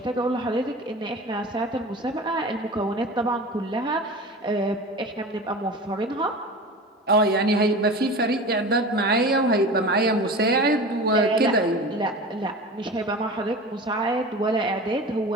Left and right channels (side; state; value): both; normal; correlation 0.33